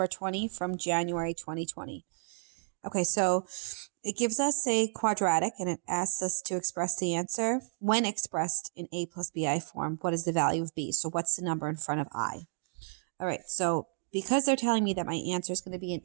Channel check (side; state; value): left; silent; digital silence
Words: 20 from January 2020. Okay, so it gives us a quadratic and it asks us to express the answer. When expressed in a plus bi form, what is the value of b? So what's the number in front of I? All right, so because they're telling me that my answer is going to be in